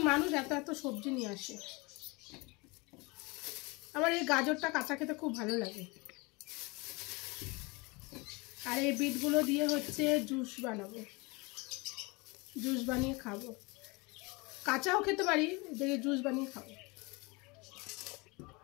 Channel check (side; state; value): right; quieter; 26.5 dB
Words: মানুষ এত এত সবজি নিয়ে আসে। আমার এই গাজরটা কাঁচা খেতে খুব ভালো লাগে। আর এই বিটগুলো দিয়ে হচ্ছে জুস বানাবো, জুস বানিয়ে খাবো। কাঁচাও খেতে পারি, দেখে জুস বানিয়ে খাবো।